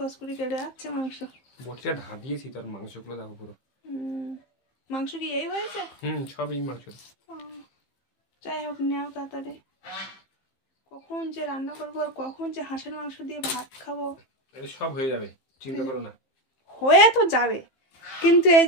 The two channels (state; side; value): late; right; 15 ms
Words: করে কেটে যাচ্ছে মাংস। বটিটা ধা দিয়েছি, তার মাংসগুলো দেখো পুরো। মাংস কি এই হয়েছে? সব এই মাংস। যাই হোক, নেও তাড়াতাড়ি। কখন যে রান্না করবো আর কখন যে হাঁসের মাংস দিয়ে ভাত খাবো। সব হয়ে যাবে, চিন্তা করো না। হয়ে তো যাবে, কিন্তু এই